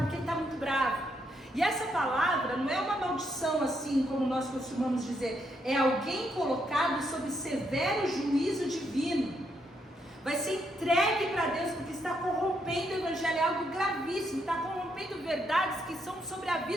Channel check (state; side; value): normal; both; correlation 0.77